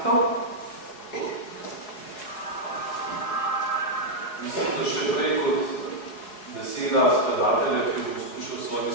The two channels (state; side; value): late; right; 4.7 ms